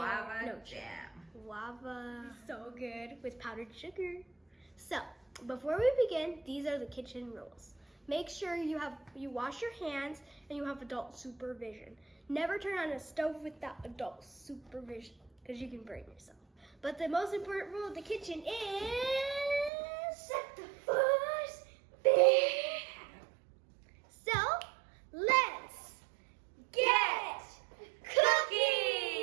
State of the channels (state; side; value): drops out; left; at 19.7 s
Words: jam. Guava. So good with powdered sugar. So, before we begin, these are the kitchen rules. Make sure you wash your hands and you have adult supervision. Never turn on a stove without adult supervision because you can burn yourself. But the most important rule of the kitchen is set the first beer. So, let's get